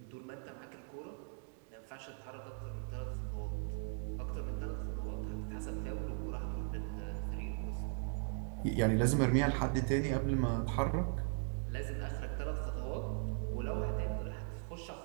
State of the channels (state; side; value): silent; left; 52 dB below the other